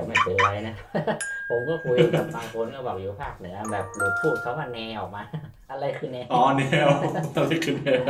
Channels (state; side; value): identical; both; correlation 1.00